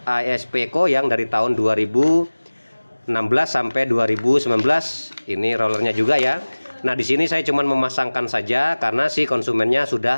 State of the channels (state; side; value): inverted; both; correlation -1.00